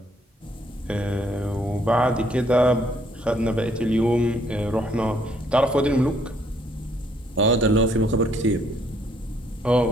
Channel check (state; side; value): normal; both; correlation 0.67